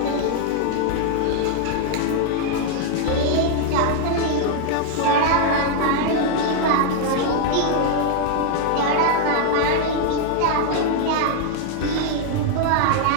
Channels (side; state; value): both; different; correlation 0.00